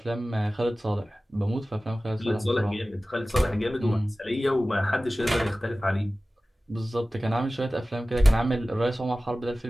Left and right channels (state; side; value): normal; both; correlation 0.96